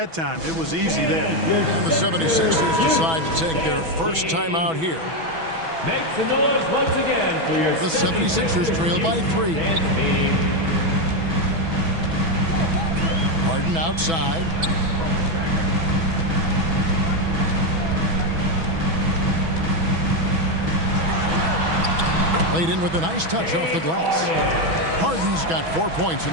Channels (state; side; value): late; left; 6.1 ms